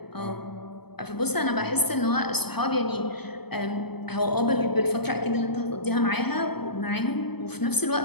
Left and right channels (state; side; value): late; right; 0.97 ms